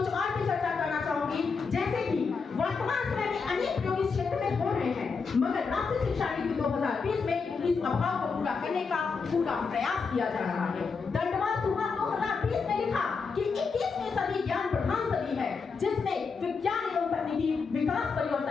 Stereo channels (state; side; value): quieter; right; 5.1 dB